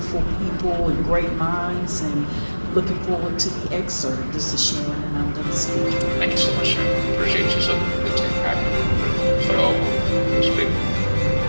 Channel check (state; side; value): inverted; both; correlation -1.00